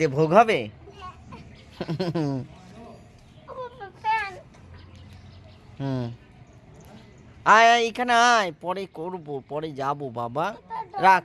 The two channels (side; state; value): both; identical; correlation 1.00